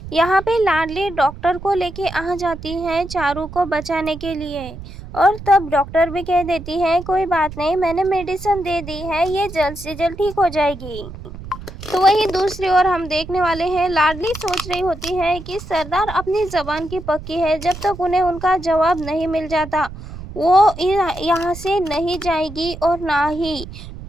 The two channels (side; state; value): right; noise; rumble, 13 dB below the sound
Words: यहाँ पे लाडली डॉक्टर को लेके आ जाती है चारू को बचाने के लिए, और तब डॉक्टर भी कह देती है, कोई बात नहीं, मैंने मेडिसिन दे दी है, ये जल्द से जल्द ठीक हो जाएगी। तो वहीं दूसरी ओर हम देखने वाले हैं, लाडली सोच रही होती है कि सरदार अपनी जबान की पक्की है, जब तक उन्हें उनका जवाब नहीं मिल जाता वो यहाँ से नहीं जाएगी और ना ही